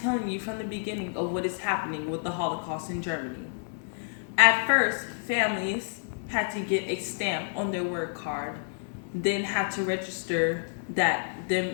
you from the beginning of what is happening with the Holocaust in Germany. At first, families had to get a stamp on their work card, then had to register that them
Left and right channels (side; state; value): right; silent; 59 dB below the other